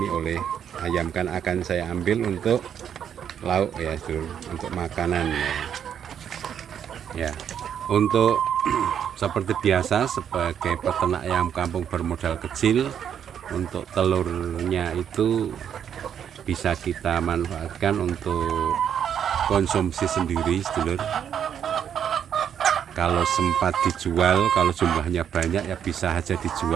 oleh ayam, kan akan saya ambil untuk lauk ya, untuk makanan ya. Ya, untuk seperti biasa sebagai peternak ayam kampung bermodal kecil, untuk telurnya itu bisa kita manfaatkan untuk konsumsi sendiri sedulur. Kalau sempat dijual, kalau jumlahnya banyak ya bisa aja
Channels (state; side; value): quieter; left; 8.7 dB